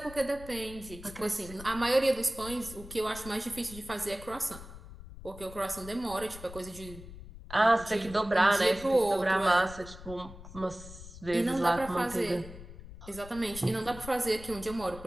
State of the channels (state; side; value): noise; left; rumble, 15 dB below the sound